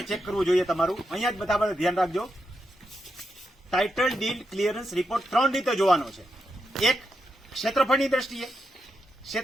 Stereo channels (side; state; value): both; normal; correlation 0.85